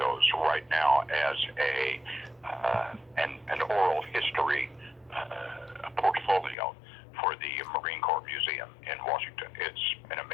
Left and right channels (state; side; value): drops out; right; at 6.6 s